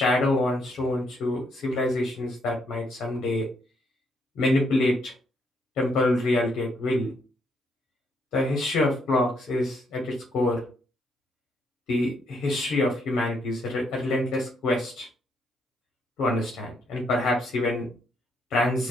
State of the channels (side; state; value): both; normal; correlation 0.74